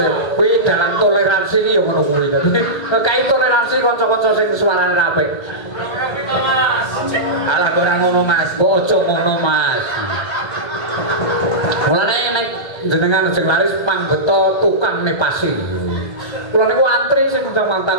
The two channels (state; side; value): late; right; 1.3 ms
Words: kuwi dalam toleransi iki ya ngono kuwi. Kae toleransi kanca-kanca sing suarane apik. Alah ora ngono, Mas. Kok aja ngono, Mas. Mulane nek jenengan sing laris panggeta tukang nepasi. Kula niku antri sing udah